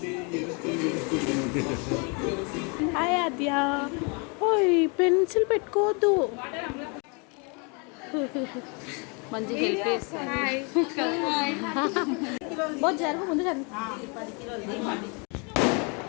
హాయ్ ఆద్య ఓయ్ పెన్సిల్ పెట్టుకోవద్దు మంచిగా హెల్ప్ చేస్తాను జరుగు ముందు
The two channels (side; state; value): right; quieter; 33.4 dB